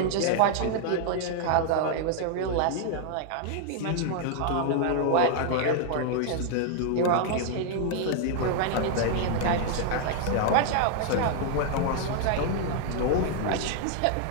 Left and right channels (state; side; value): different; both; correlation -0.01